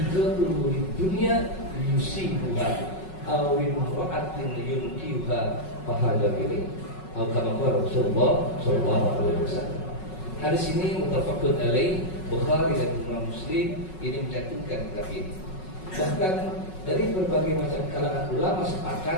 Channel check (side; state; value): right; late; 5.4 ms